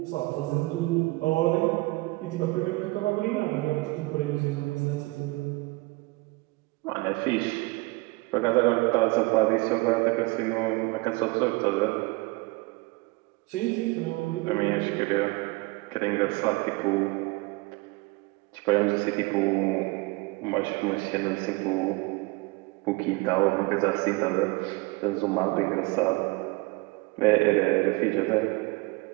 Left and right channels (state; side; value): quieter; left; 24.1 dB